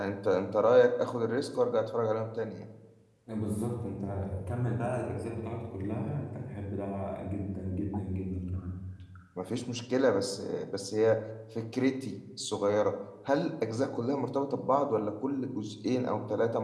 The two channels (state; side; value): identical; both; correlation 1.00